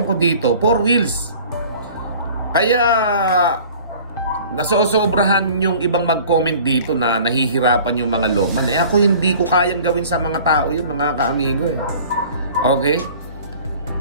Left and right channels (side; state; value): both; inverted; correlation -0.47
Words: ko dito, 4 wheels. Kaya nasosobrahan yung ibang mag-comment dito na nahihirapan yung mga Lopman. Ako hindi ko kayang gawin sa mga tao yun, mga kaamigo eh. Okay?